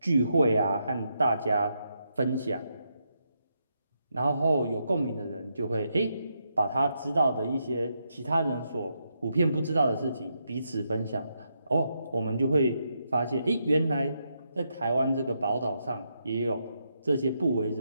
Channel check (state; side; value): inverted; both; correlation -0.81